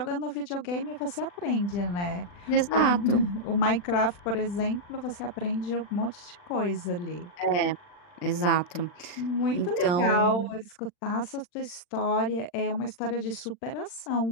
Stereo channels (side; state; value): right; late; 39 ms